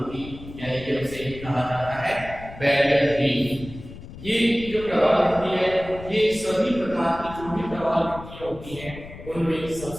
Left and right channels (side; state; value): left; noise; rumble, 14 dB below the sound